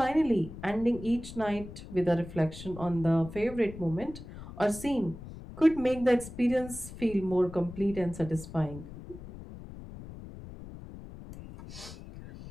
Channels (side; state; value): left; noise; rumble, 13 dB below the sound